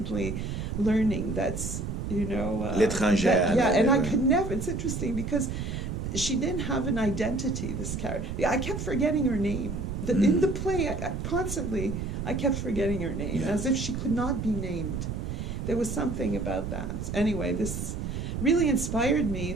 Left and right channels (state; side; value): noise; right; rumble, 4 dB below the sound